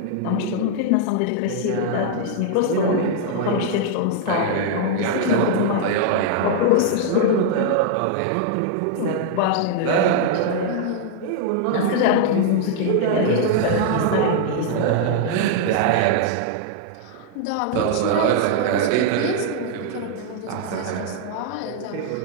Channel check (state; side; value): different; both; correlation -0.01